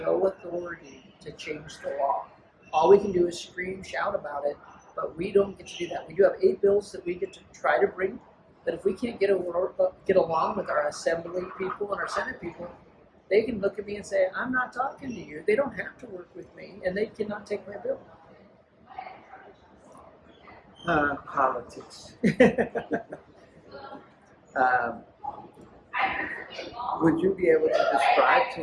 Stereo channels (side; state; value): both; identical; correlation 1.00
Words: no authority to change the law. All we can do is scream, shout about it, but we don't get to do that. We do have 8 bills that we get to try to bring, but if we can't get along with our assembly people and our Senate people, they can look at me and say, I'm not talking to you. They don't have to work with me, and they cannot take my bill. Politics. Would you be able to describe